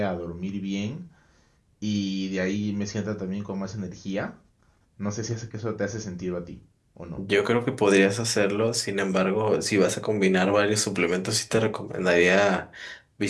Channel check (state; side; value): identical; both; correlation 1.00